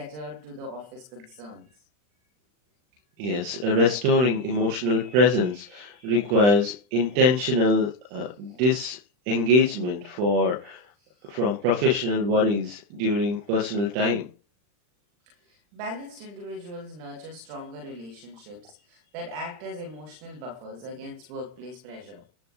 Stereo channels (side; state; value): left; late; 40 ms